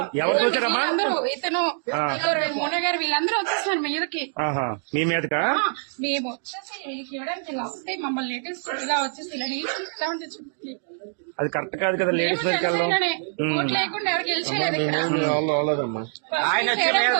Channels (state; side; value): silent; left; 62 dB below the other